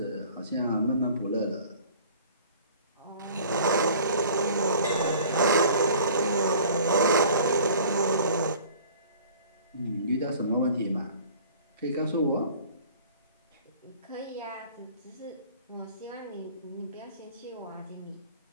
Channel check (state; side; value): inverted; both; correlation -0.48